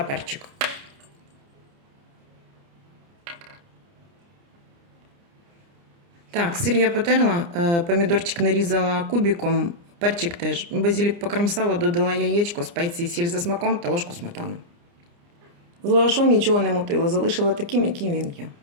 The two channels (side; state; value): left; late; 29 ms